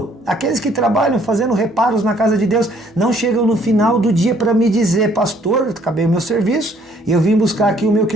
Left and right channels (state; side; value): normal; both; correlation 0.63